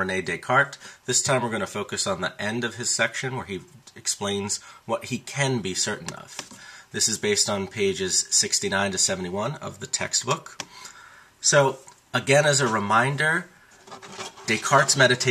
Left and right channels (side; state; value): both; identical; correlation 1.00